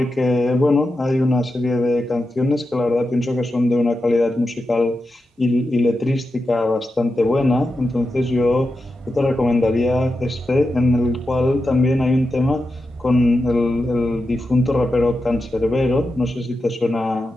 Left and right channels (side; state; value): both; normal; correlation 0.89